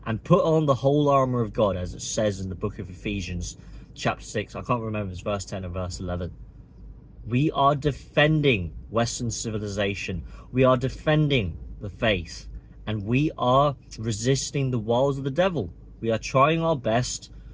and put on the whole armor of God, as it says in the book of Ephesians chapter 6. I can't remember if it's verse 10 or verse 11. We are defending Western civilization. We are defending the faith, and we are resisting the wiles of the devil. We are trying our best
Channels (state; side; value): identical; both; correlation 1.00